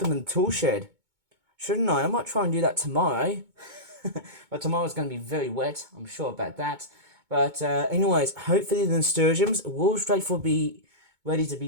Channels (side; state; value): left; late; 2.2 ms